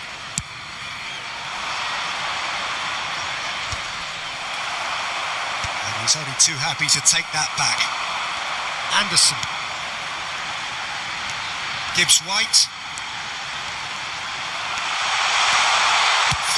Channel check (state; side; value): identical; both; correlation 1.00